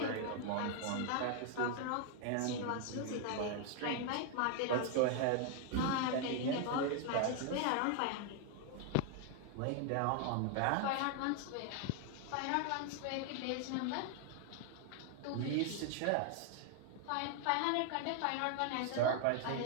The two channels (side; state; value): both; different; correlation 0.00